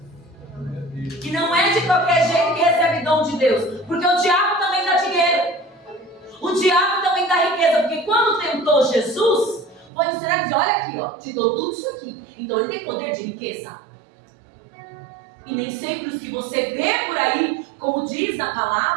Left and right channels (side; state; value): left; drops out; at 9.9 s